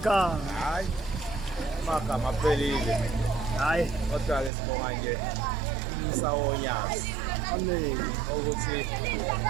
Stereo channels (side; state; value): left; drops out; at 4.5 s